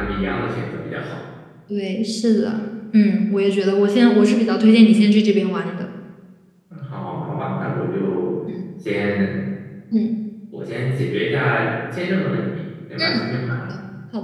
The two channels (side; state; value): both; identical; correlation 1.00